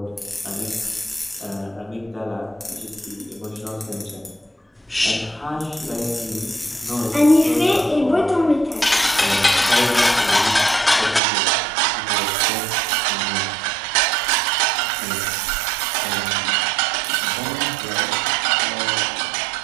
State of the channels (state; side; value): drops out; left; at 11.2 s